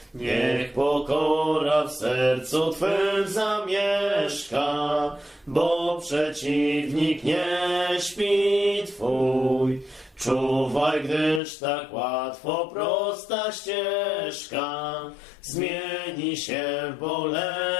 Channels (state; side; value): drops out; right; at 11.4 s